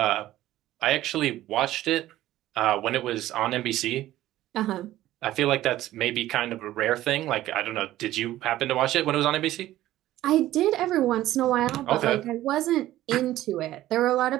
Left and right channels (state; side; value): quieter; left; 14.6 dB